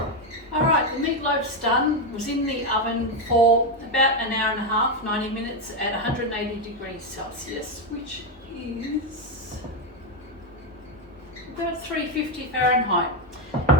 All right, the meatloaf's done. It was in the oven for about an hour and a half, 90 minutes at 180 degrees Celsius, which is about 350 Fahrenheit.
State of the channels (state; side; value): normal; both; correlation 0.07